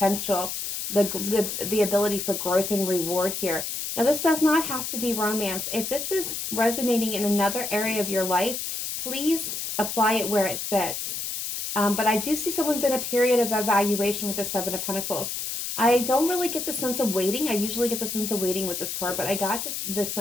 the ability for growth and reward here. Now, this does not have to be romance. If this is resonating in another area of your life, please apply it where it fits. But I do see someone's in a period of evaluation with the Seven of Pentacles. I don't really get the sense of waiting. I usually get the sense of waiting with this card, but I got the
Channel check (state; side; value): noise; left; hiss, 4 dB below the sound